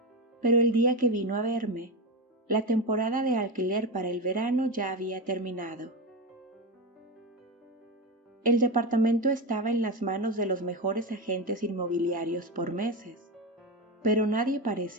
Pero el día que vino a verme, la temporada de alquiler para el verano ya había terminado. El departamento estaba en las manos de los mejores agentes inmobiliarios por meses, pero nadie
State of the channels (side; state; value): both; normal; correlation 0.17